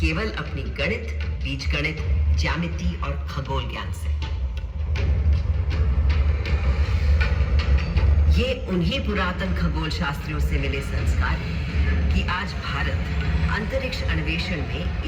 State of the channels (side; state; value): both; identical; correlation 1.00